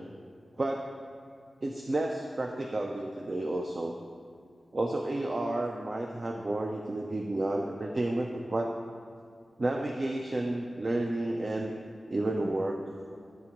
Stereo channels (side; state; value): both; normal; correlation 0.96